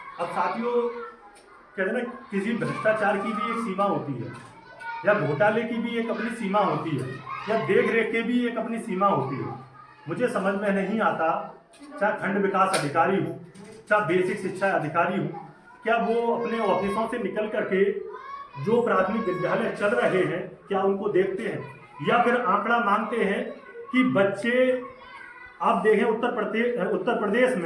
अब साथियों, कहते हैं ना, किसी भ्रष्टाचार की भी एक सीमा होती है या घोटाले की भी एक अपनी सीमा होती है या देख रेख की भी एक अपनी सीमा होती है। मुझे समझ में नहीं आता, चाहे खंड विकास अधिकारी हो चाहे बेसिक शिक्षा अधिकारी हो, क्या वो अपने ऑफिसों से निकल करके जो प्राथमिक विद्यालय चल रहे हैं क्या उनको देखते हैं या फिर आंकड़ा मांगते हैं कि बच्चे, आप देखें उत्तर प्रदेश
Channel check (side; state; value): both; identical; correlation 1.00